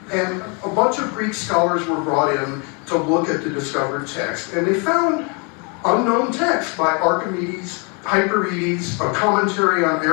And a bunch of Greek scholars were brought in to look at the discovered text. And they found unknown text by Archimedes Hyperides, a commentary on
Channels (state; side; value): quieter; right; 34.0 dB